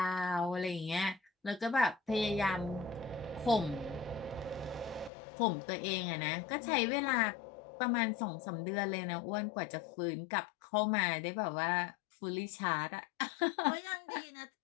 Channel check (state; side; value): drops out; right; at 5.1 s